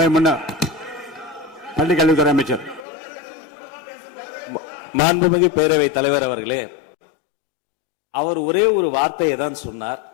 முன்னர் பள்ளி கல்வித்துறை அமைச்சர். மாண்புமிகு பேரவைத் தலைவர் அவர்களே, அவர் ஒரே ஒரு வார்த்தையை தான் சொன்னார்.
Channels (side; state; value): right; drops out; at 2.9 s